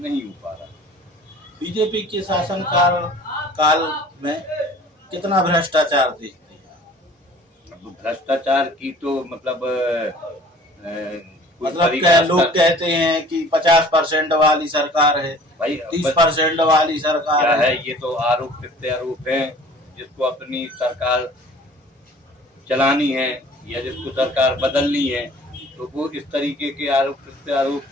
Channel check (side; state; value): both; normal; correlation 0.48